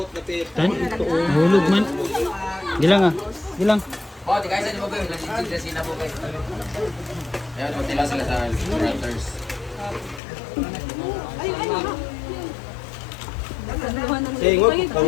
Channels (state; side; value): drops out; right; at 10.2 s